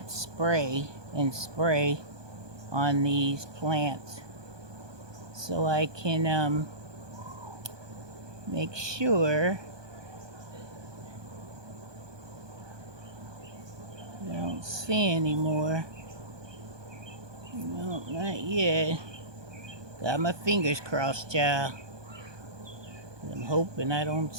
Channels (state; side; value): late; left; 1.2 ms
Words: spray and spray on these plants so I can make sure I don't see anymore. No, not yet. Got my fingers crossed, child. I'm hoping I don't